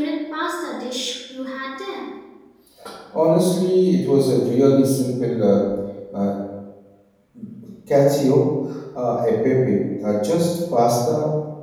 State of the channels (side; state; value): both; identical; correlation 1.00